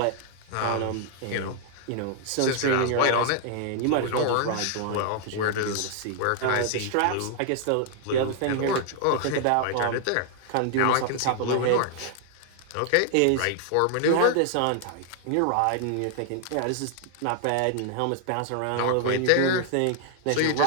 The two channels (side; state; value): both; different; correlation 0.00